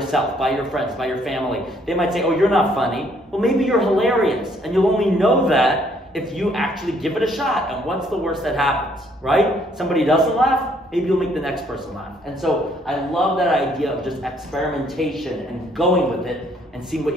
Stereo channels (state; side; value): normal; both; correlation 0.66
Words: by your friends, by your family. They might say, oh, you're not funny. Well, maybe you're hilarious, and you'll only know that if you actually give it a shot. And what's the worst that happens, right? Somebody doesn't laugh, maybe you'll make the next person laugh. And so I love that idea of just experimentation and going with it and seeing what